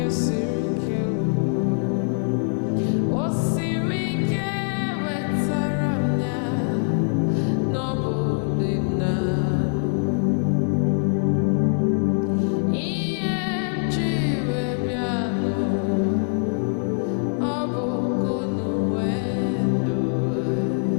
siri ike o siri ike wetara m ya n'ọbụ dị m n'alụ ihe m ji wee bịa n'ụwa ọ bụ kunu wee ndụ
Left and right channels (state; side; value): silent; right; digital silence